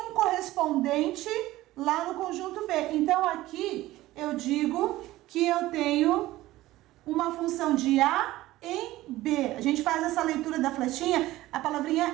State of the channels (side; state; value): left; quieter; 16.7 dB